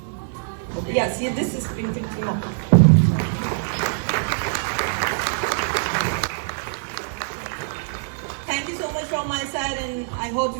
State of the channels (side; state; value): left; silent; digital silence